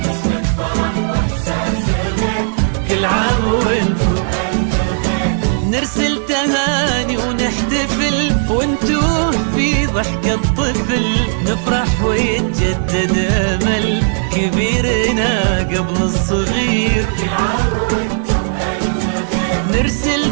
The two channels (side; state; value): left; silent; digital silence